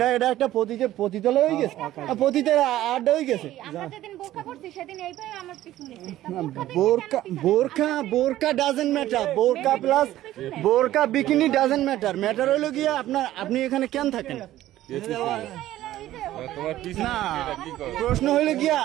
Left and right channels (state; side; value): quieter; left; 14.2 dB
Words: একটা পতিতালয় হয়ে গেছে, পতিতের আড্ডা হয়ে গেছে। আমরা যেদিন বোরকা পড়ছি সেদিন এইভাবে আমার পিছনে বোরকা ডাজন্ট ম্যাটার, বোরকা প্লাস বোরকা বিকিনি ডাজন্ট ম্যাটার হলো গিয়া আপনি এখানে কেন থাকেন? না, প্রশ্ন হইলে গিয়া